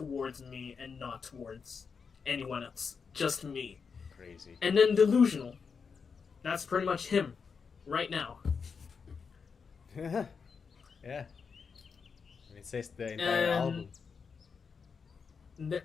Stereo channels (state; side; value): quieter; right; 5.7 dB